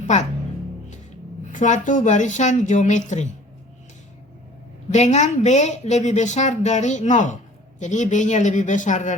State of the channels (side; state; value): both; normal; correlation 0.49